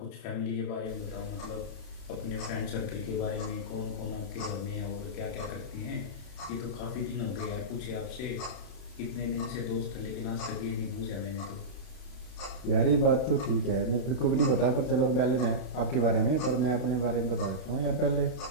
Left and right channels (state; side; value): late; right; 31 ms